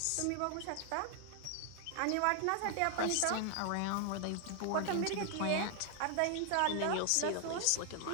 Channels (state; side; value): different; both; correlation 0.00